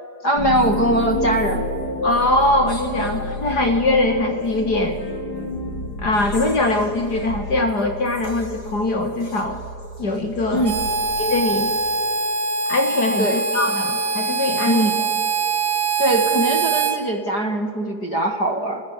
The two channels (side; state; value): right; late; 4.9 ms